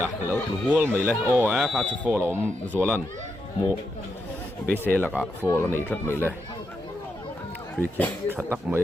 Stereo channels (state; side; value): normal; both; correlation 0.84